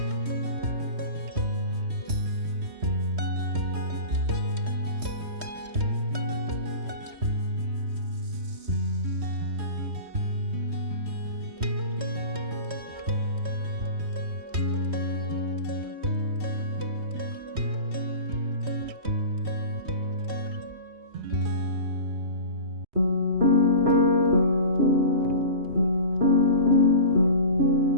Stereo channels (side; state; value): left; late; 3.1 ms